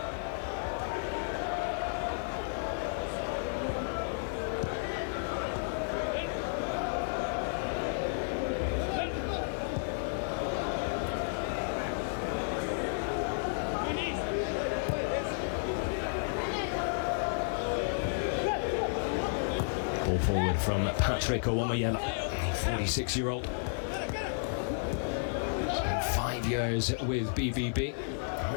Ball forward from Patrick Owomayela, 46-year-old. Spent 5 years with BVB, a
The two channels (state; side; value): silent; right; digital silence